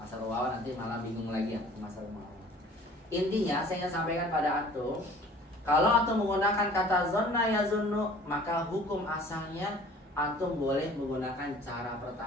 muawwal, nanti malah bingung lagi ya masdar muawwal. Intinya saya ingin sampaikan pada antum, kalau antum menggunakan kata zonna yazunnu, maka hukum asalnya antum boleh menggunakan cara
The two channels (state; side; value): normal; both; correlation 0.49